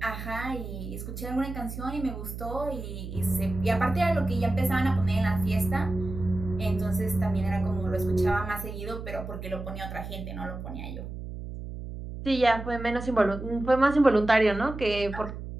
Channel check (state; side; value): noise; right; hum, 9 dB below the sound